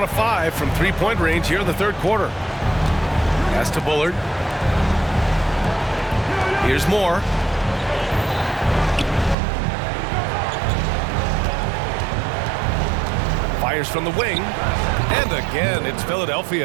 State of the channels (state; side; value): drops out; left; at 9.3 s